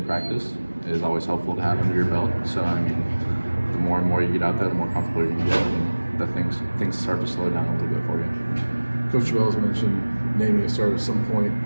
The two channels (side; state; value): both; inverted; correlation -1.00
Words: practice, is always helpful to have under your belt. So I mean, the more and more you get out there, the more comfortable you can get, and the things start to slow down a little bit for you. Coach Terrell's mentioned naming a starter at some point,